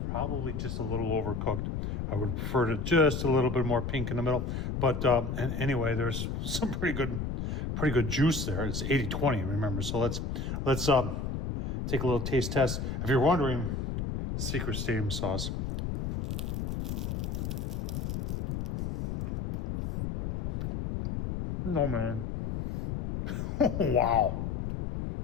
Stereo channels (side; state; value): left; noise; rumble, 3 dB below the sound